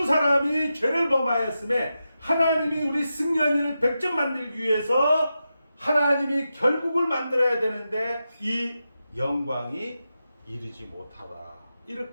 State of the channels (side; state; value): both; inverted; correlation -0.90